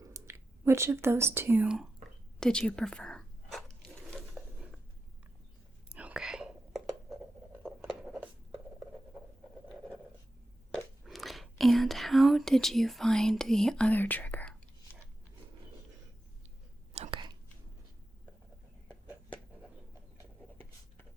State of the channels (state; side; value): normal; both; correlation 0.91